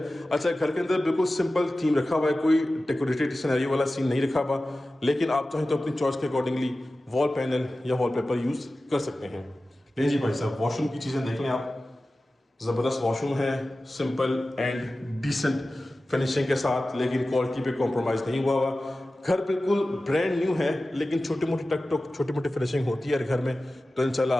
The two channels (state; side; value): normal; both; correlation 0.95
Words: अच्छा, घर के अंदर बिल्कुल सिंपल थीम रखा हुआ है, कोई डेकोरेटेड सिनेरियो वाला सीन नहीं रखा हुआ, लेकिन आप चाहें तो अपनी चॉइस के अकॉर्डिंगली वॉल पैनल या वॉलपेपर यूज़ कर सकते हैं। ले जी भाई साहब, वॉशरूम की चीज़ें देख लें आप, ज़बरदस्त वॉशरूम है, सिंपल एंड डिसेंट फिनिशिंग के साथ, लेकिन क्वालिटी पे कॉम्प्रोमाइज़ नहीं हुआ हुआ। घर बिल्कुल ब्रांड न्यू है, लेकिन छोटी मोटी टक टक छोटी मोटी फिनिशिंग होती है घर में, तो इंशाल्लाह